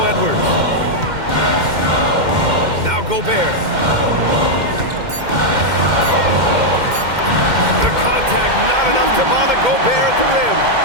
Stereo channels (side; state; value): left; late; 2.1 ms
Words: Edwards. Now Gobert. The contact not enough to bother Gobert at the rim.